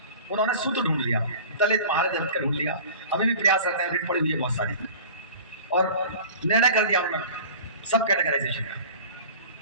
उन्होंने सूत्र ढूंढ लिया, दलित महादलित का ढूंढ लिया। अभी भी प्रयास करते हैं, रिट पड़ी हुई है बहुत सारी, और निर्णय कर दिया उन्होंने सब कैटेगराइजेशन का।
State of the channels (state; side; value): inverted; both; correlation -0.40